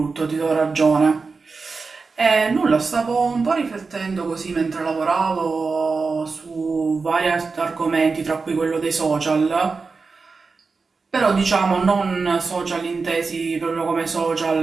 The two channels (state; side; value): quieter; left; 4.4 dB